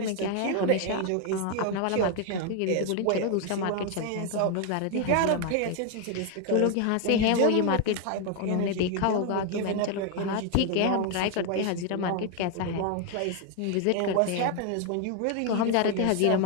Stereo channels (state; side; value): different; both; correlation 0.01